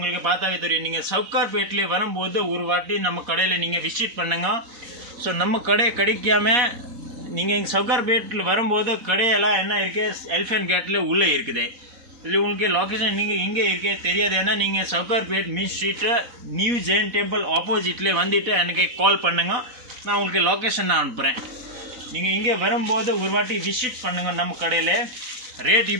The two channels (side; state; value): left; late; 4.1 ms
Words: பார்த்தாவே தெரியும். நீங்கள் சவுகார்பேட்டில் வரும்போது ஒரு வாட்டி நம்ம கடையில் நீங்கள் விசிட் பண்ணுங்க. ஸோ நம்ம கடை கிடைக்காம நீங்கள் இங்கே சவுகார்பேட்டில் வரும்போது கடையெல்லாம் என்ன இருக்குது எலிஃபென்ட் கேட்டில் உள்ளே இருக்குது. இதில் உங்களுக்கு லொக்கேஷன் நீங்கள் இங்கே இருக்கே தெரியாது. ஏன்னா நீங்கள் சவுகார்பேட் மீன் ஸ்ட்ரீட்டு நியூ ஜெயின் டெம்பிள் ஆப்போசிட்லேயே வந்துட்டு எனக்கு கால் பண்ணுங்க. நான் உங்களுக்கு லொக்கேஷன் நான் அனுப்புகிறேன். நீங்கள் இங்கே வரும்போது ஒரு வாட்டி விசிட் பண்ணுங்கள். நம்ம கடையில் ரேட்